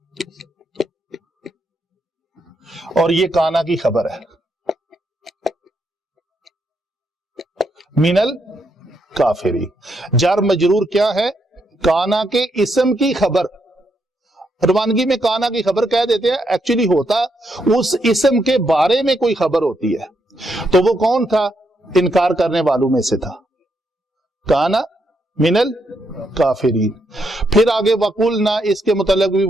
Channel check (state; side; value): normal; both; correlation 0.78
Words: اور یہ کانا کی خبر ہے۔ منل کافری، جار مجرور کیا ہے؟ کانا کے اسم کی خبر۔ روانگی میں کانا کی خبر کہہ دیتے ہیں، ایکچولی ہوتا اس اسم کے بارے میں کوئی خبر ہوتی ہے۔ تو وہ کون تھا؟ انکار کرنے والوں میں سے تھا۔ کانا منل کافرین۔ پھر آگے وقلنا، اس کے متعلق بھی